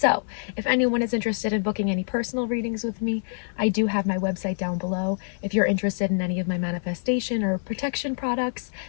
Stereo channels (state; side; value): silent; right; digital silence